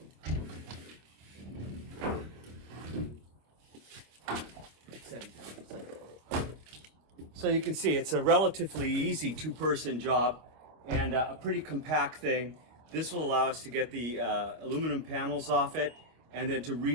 So you can see it's a relatively easy two-person job and a pretty compact thing. This will allow us to get the aluminum panels off it and then to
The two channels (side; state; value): left; late; 25 ms